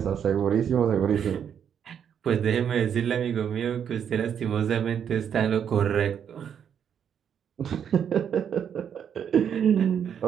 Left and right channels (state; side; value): quieter; left; 8.3 dB